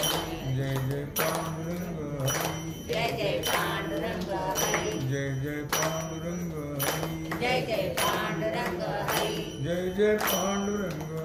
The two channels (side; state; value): both; identical; correlation 1.00